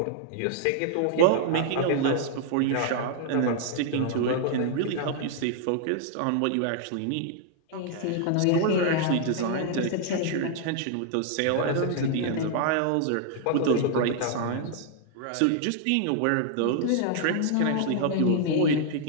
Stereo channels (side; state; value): both; different; correlation 0.00